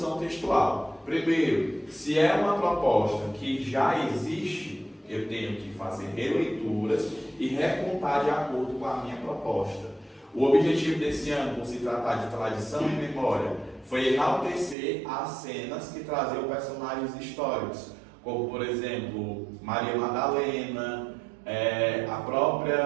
textual. Primeiro, se é uma proposta que já existe, eu tenho que fazer releituras e recontar de acordo com a minha proposta. O objetivo desse ano, por se tratar de tradição e memória, foi enaltecer as cenas que traziam personagens históricos, como, por exemplo, Maria Madalena,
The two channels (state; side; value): drops out; left; at 14.8 s